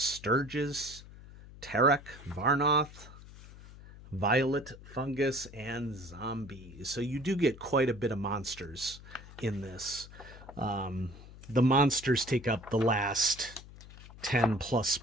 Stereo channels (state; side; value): noise; left; hum, 17 dB below the sound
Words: Tarek, Varnoth, Violet Fungus, and Zombies. So you do get quite a bit of monsters in this. The monsters take up the last 10 plus